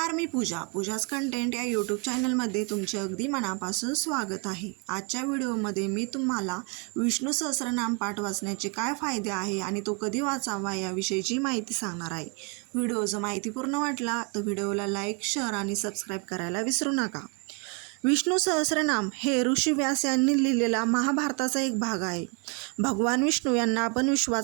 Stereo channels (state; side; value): quieter; left; 34.0 dB